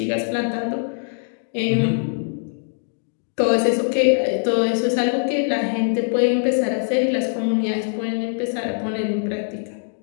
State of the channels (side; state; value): right; silent; digital silence